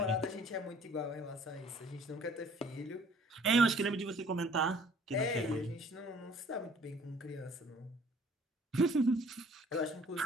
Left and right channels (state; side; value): normal; both; correlation 0.55